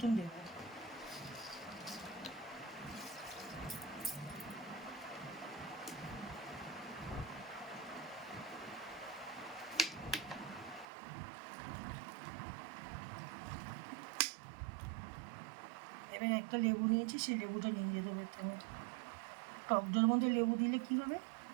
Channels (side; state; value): left; drops out; at 10.9 s